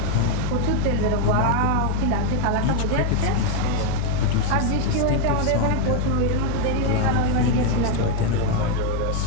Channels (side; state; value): both; different; correlation 0.00